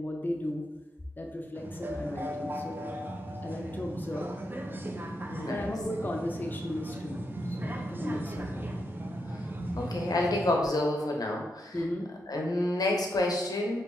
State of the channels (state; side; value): normal; both; correlation 0.83